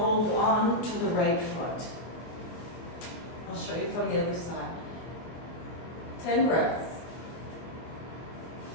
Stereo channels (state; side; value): late; right; 24 ms